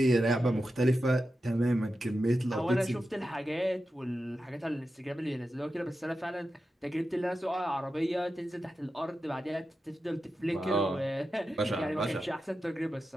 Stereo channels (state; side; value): normal; both; correlation 0.91